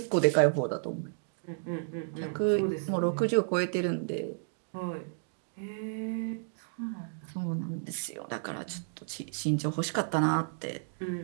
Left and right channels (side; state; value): left; silent; digital silence